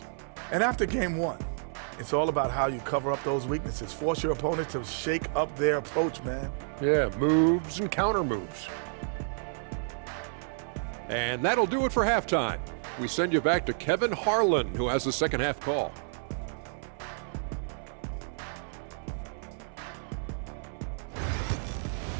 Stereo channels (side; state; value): left; silent; 56 dB below the other